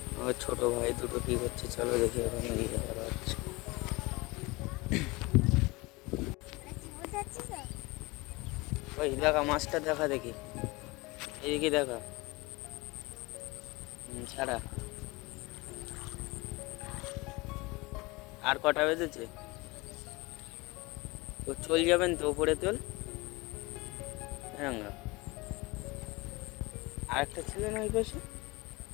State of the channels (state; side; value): quieter; right; 23.9 dB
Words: আমার ছোট ভাই দুটো কি করছে চলো দেখি, ওখানে গিয়ে দেখা হচ্ছে। ওই দেখা মাছটা দেখা, দেখি এইদিকে দেখা। ছাড়া আর কটা বেজেছে? ও চল যাবেন তো উপরে, তোল রাঙ্গা। আর একটা ছিল না ওই পাশে?